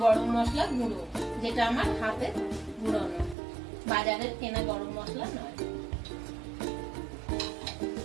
গরম মশলা গুঁড়ো, যেটা আমার হাতে গুঁড়োনো, বাজারের কেনা গরম মশলা নয়।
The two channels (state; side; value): drops out; left; at 3.4 s